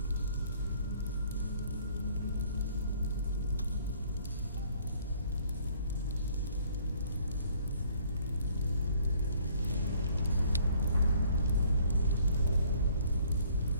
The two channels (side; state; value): both; inverted; correlation -0.60